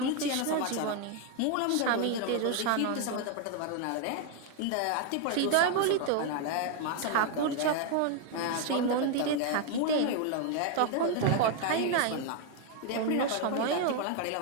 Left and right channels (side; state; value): both; different; correlation 0.00